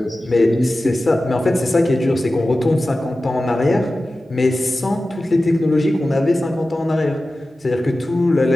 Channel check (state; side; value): normal; both; correlation 0.95